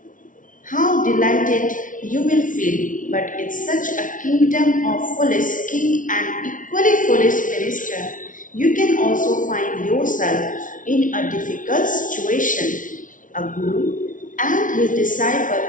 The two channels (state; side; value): late; right; 0.38 ms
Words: How delighted you will feel, but in such a kingdom of foolish king and equally foolish minister, you can also find yourself in a difficult situation. A guru and his disciple